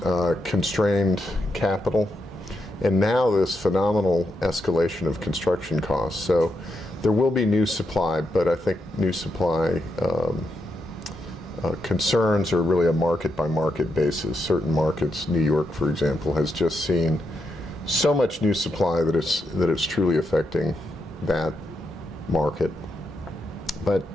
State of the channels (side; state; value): both; normal; correlation 0.82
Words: constrained capital, and now this phenomenal escalation of construction costs. So there will be new supply, but I think new supply concerns are really a market-by-market basis. Certain markets, New York, for example, has just seen so much new supply that it's truly affecting that market. But